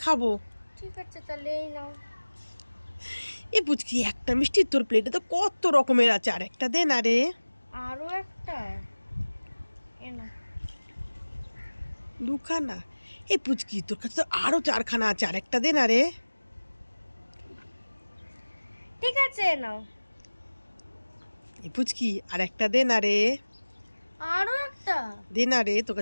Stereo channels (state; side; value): inverted; both; correlation -1.00